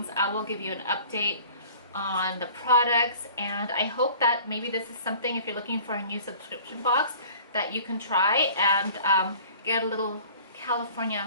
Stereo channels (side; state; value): both; inverted; correlation -0.47